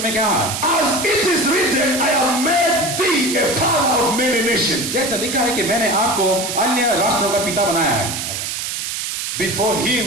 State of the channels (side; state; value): right; noise; hiss, 4 dB below the sound